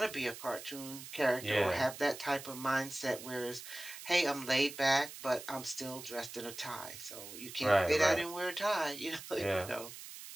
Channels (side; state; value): right; noise; hiss, 12 dB below the sound